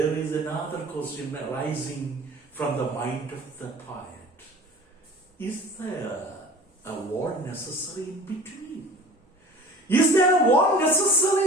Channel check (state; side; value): normal; both; correlation 0.43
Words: is another question arising from the mind of the poet. Is there a wall necessary in between? Is there a wall